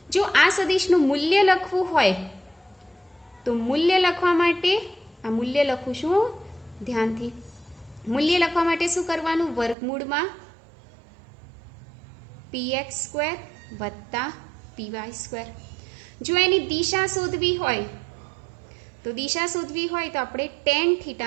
જો આ સદિશનું મૂલ્ય લખવું હોય તો મૂલ્ય લખવા માટે આ મૂલ્ય લખું છું ધ્યાનથી. મૂલ્ય લખવા માટે શું કરવાનું? વર્ગમૂળમાં PX સ્ક્વેર વત્તા PY સ્ક્વેર. જો એની દિશા શોધવી હોય તો આપણે ટેન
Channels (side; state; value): left; drops out; at 9.8 s